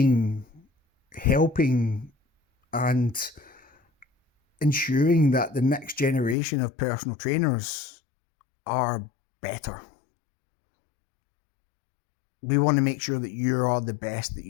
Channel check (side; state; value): right; drops out; at 6.4 s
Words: helping and ensuring that the next generation of personal trainers are better. We want to make sure that you are the best that